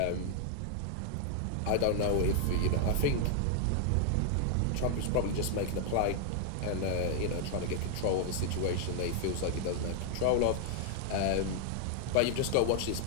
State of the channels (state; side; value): different; both; correlation 0.00